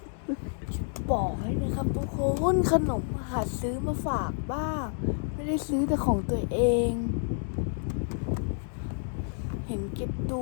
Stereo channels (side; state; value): right; silent; 58 dB below the other